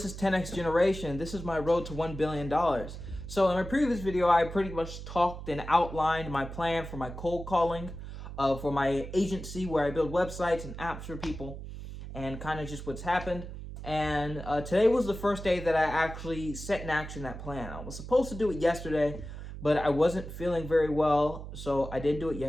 is 10X Generation. This is my road to $1 billion. So in my previous video, I pretty much talked and outlined my plan for my cold calling, for my agency where I build websites and apps for people, and kind of just what's happened. And today was the first day that I actually set in action that plan. I was supposed to do it yesterday, but I wasn't feeling very well, so I didn't do it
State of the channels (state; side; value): noise; right; hum, 10 dB below the sound